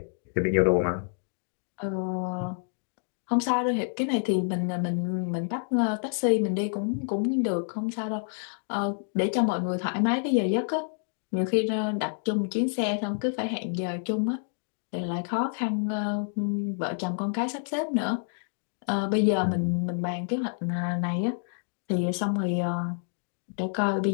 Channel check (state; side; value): silent; right; digital silence